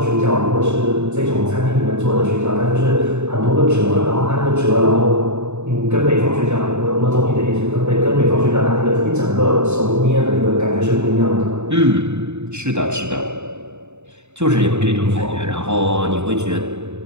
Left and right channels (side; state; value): left; late; 0.82 ms